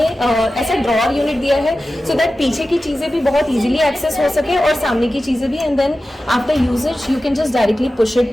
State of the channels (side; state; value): both; normal; correlation 0.94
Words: ऐसा ड्रॉर यूनिट दिया है सो दैट पीछे की चीजें भी बहुत इजीली एक्सेस हो सके और सामने की चीजें भी। And then after usages you can just directly push